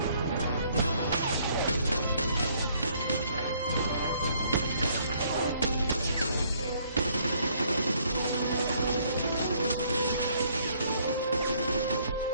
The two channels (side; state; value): both; inverted; correlation -0.65